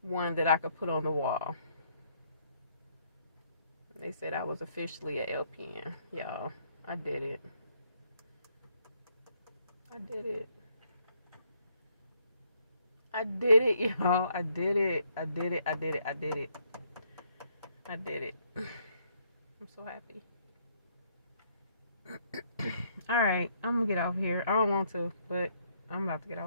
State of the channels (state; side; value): inverted; both; correlation -0.69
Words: one that I could put on the wall. They said I was officially a LPN. Y'all, I did it. I did it. I did it, y'all. I did it. I did it. I did it. I did it. I did it. I'm so happy. Alright, I'm gonna get off here. I don't want to, but I'm about to get